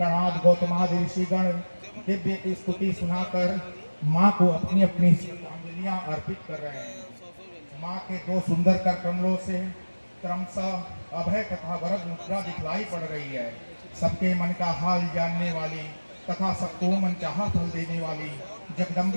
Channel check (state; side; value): inverted; both; correlation -1.00